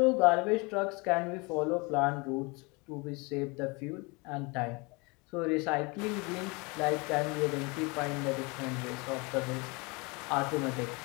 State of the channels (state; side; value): quieter; right; 28.2 dB